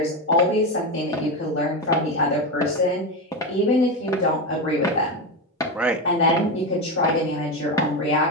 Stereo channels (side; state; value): both; normal; correlation 0.15